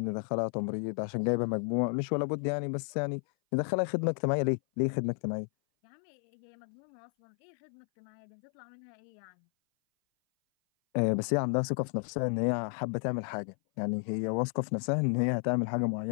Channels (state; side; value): silent; right; 56 dB below the other